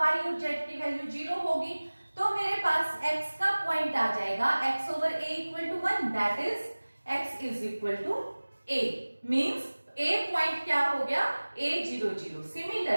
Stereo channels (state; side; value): inverted; both; correlation -1.00